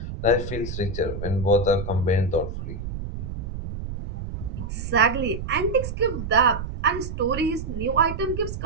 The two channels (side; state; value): right; noise; rumble, 7 dB below the sound